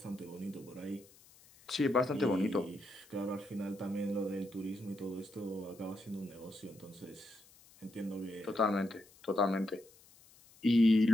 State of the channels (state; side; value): noise; left; hiss, 25 dB below the sound